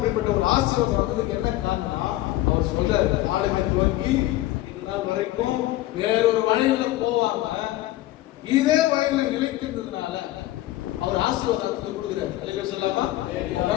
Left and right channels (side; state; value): right; quieter; 16.2 dB